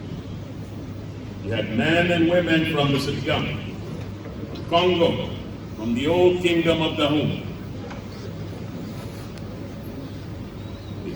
You had men and women from the Sitgam, Congo, from the old kingdom of Dahomey. They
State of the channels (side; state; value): both; identical; correlation 1.00